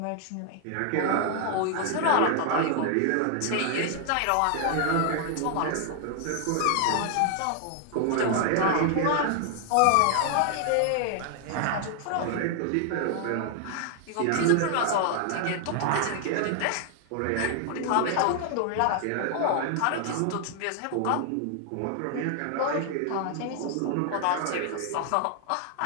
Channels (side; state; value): both; different; correlation 0.00